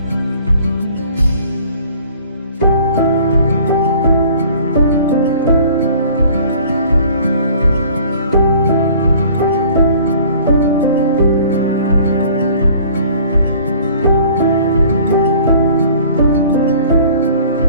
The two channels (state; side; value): inverted; both; correlation -0.51